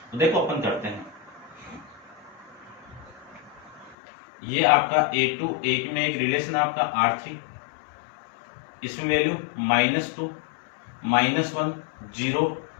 तो देखो अपन करते हैं, ये आपका A2 एक में एक रिलेशन आपका R3, इसमें वैल्यू -2, -1, 0,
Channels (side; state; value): right; drops out; at 4.0 s